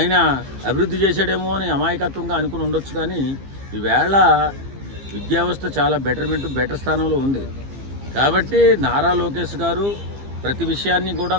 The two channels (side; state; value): left; late; 15 ms